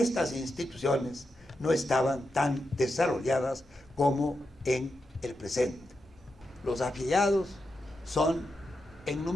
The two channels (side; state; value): both; normal; correlation 0.87